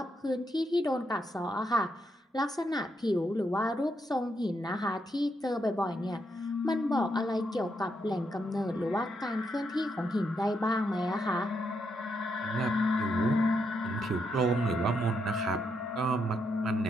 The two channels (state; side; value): normal; both; correlation 0.80